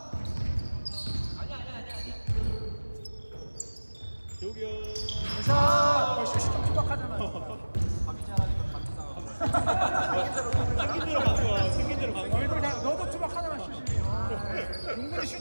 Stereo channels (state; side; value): inverted; both; correlation -1.00